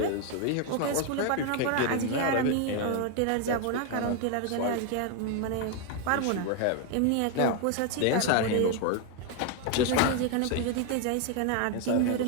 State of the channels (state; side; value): different; both; correlation 0.01